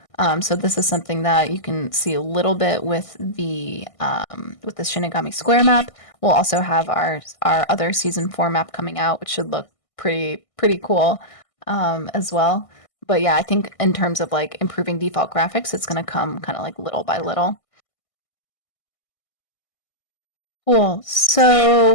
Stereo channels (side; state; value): right; late; 1.6 ms